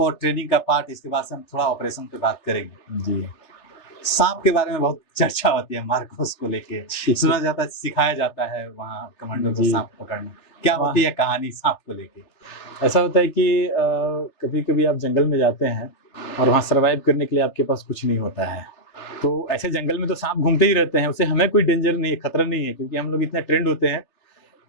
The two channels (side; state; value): right; late; 3.4 ms